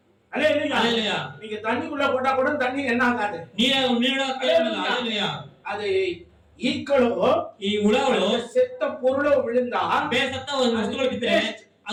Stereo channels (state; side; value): identical; both; correlation 1.00